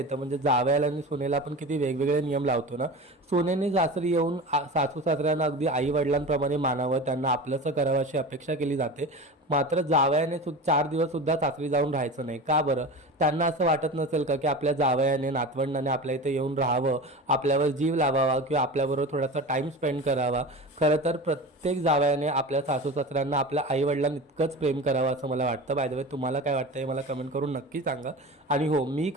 म्हणजे जावयाला आणि सुनेला आपण किती वेगवेगळे नियम लावतो ना. सुनेने सासरी येऊन सासू सासऱ्यांना अगदी आई वडिलांप्रमाणे मानावं, त्यांना आपलंसं करावं अशी अपेक्षा केली जाते. मात्र जावयाने 4 दिवस सुद्धा सासरी जाऊन राहायचं नाही. का बरं? त्यांना असं वाटत नसेल का की आपल्या जावयाने नातवंडाने आपल्या इथे येऊन राहावं, आपल्यावर जीव लावावा किंवा आपल्याबरोबर थोडासा टाइम स्पेंड करावा. खरं तर प्रत्येक जावयाने आपल्या सासू सासऱ्यांना आपल्या आई वडिलांना इतकंच प्रेम करावं असं मला वाटतं. बाय द वे, तुम्हाला काय वाटतं हे मला कमेंट करून नक्की सांगा. आणि हो, मी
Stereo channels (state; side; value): normal; both; correlation 0.31